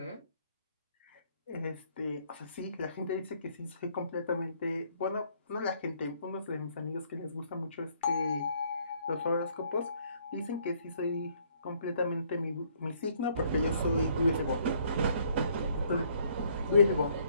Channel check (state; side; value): inverted; both; correlation -0.65